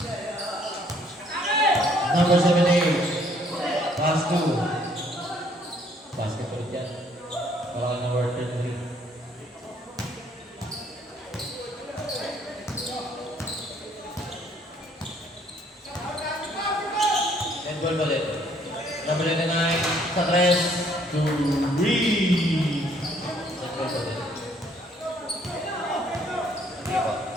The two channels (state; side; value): normal; both; correlation 0.64